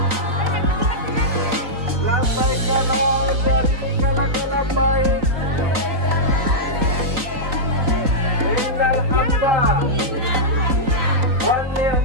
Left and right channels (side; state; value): left; late; 3.9 ms